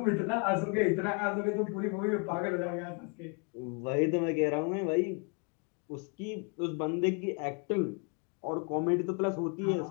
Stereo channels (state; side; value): quieter; right; 35.2 dB